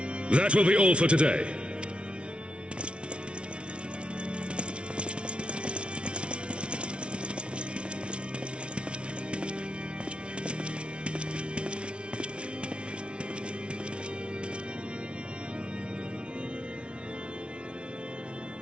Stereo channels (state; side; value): late; left; 0.059 ms